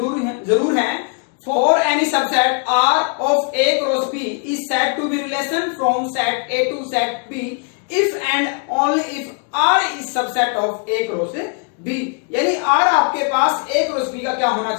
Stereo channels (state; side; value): quieter; right; 39.1 dB